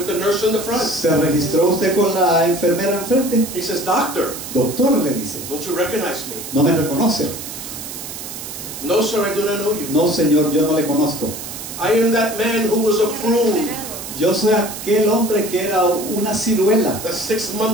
the nurse in the front? ¿Se registró usted con la enfermera enfrente? He says, Doctor, Doctor, le dice, don't you recognize me? ¿no me reconoce? No, sir, I do not know you. No, señor, yo no le conozco. I am that man who was a prune. Yo soy aquel hombre que era una ciruela, That 6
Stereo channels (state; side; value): noise; right; hiss, 10 dB below the sound